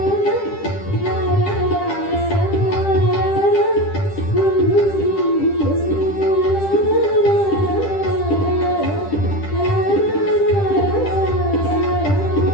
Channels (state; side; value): late; right; 10 ms